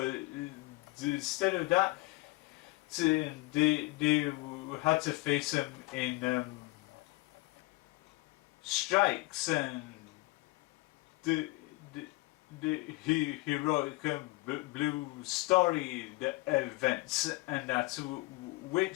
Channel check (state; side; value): quieter; right; 22.8 dB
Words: instead of that, they had to face him in strikes and the heroic blue story events and that,